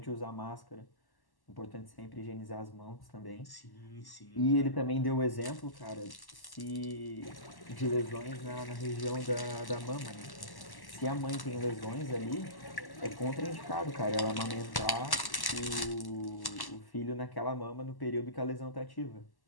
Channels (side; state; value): right; late; 1.1 ms